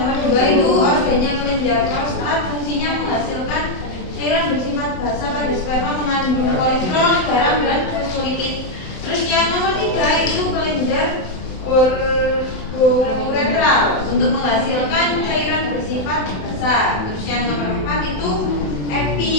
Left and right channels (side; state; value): right; late; 27 ms